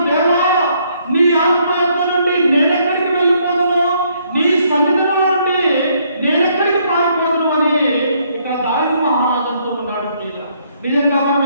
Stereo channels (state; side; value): inverted; both; correlation -0.69